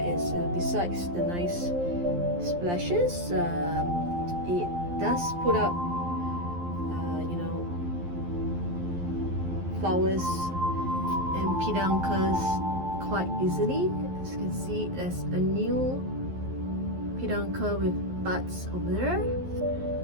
is besides the nice splashes, it does put up flowers and peduncles quite easily. As you can see, there's a new peduncle with buds over there,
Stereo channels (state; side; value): late; left; 11 ms